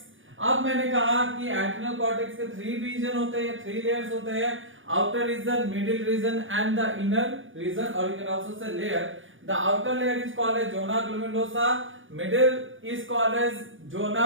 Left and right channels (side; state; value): left; late; 0.57 ms